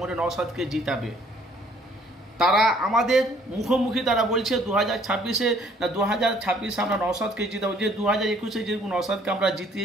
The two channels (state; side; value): normal; both; correlation 0.60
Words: নওশাদকে জিতাবে। তারা আমাদের মুখোমুখি তারা বলছে 2026-এ না 2026-এ আমরা নওশাদকে জিতাবো। যে 2021-এ যেরকম নওশাদকে আমরা